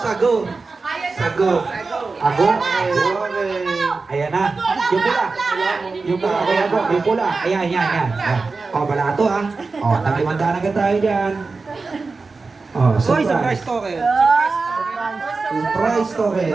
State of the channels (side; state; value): left; quieter; 4.1 dB